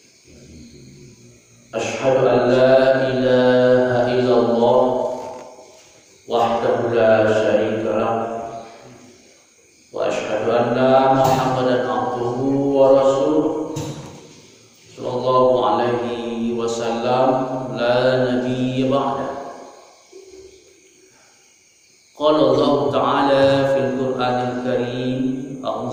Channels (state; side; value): identical; both; correlation 1.00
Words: Asyhadu an la ilaha illallah wahdahu la syarika lah wa asyhadu anna Muhammadan abduhu wa rasuluh sallallahu alaihi wasallam la nabiyya ba'da. Qala Allah ta'ala fil Qur'anil Karim,